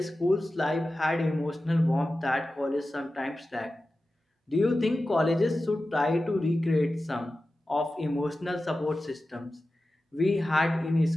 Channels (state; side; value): normal; both; correlation 0.94